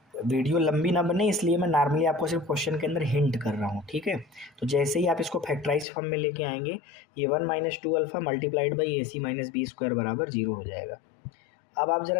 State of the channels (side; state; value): right; drops out; at 5.9 s